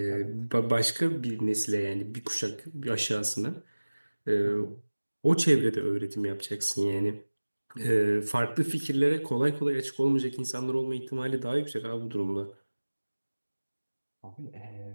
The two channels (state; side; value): inverted; both; correlation -1.00